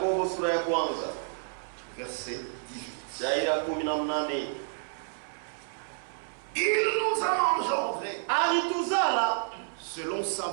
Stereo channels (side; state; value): left; silent; 58 dB below the other